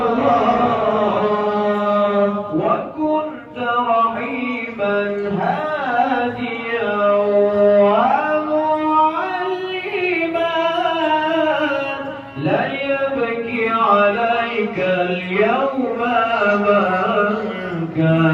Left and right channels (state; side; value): identical; both; correlation 1.00